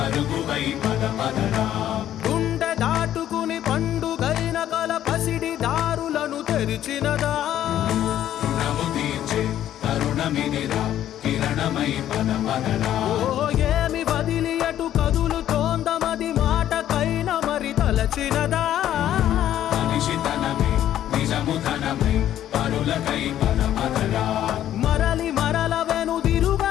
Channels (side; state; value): right; quieter; 11.7 dB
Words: పద పదరా. గుండె దాటుకుని పండుగైన కల పసిడి దారులను తెరిచినదా? రుణము తీర్చే తరుణమిదిరా కిరణమై పద పదరా. ఓ ఏమి వదిలి అటు కదులుతోందమది మాటకైన మరి తలచినదా? మనిషితనమే నిజముధనమై పరులకై పద పదరా. మరలి మరల